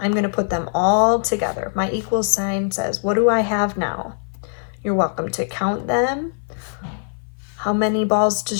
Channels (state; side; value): silent; right; 55 dB below the other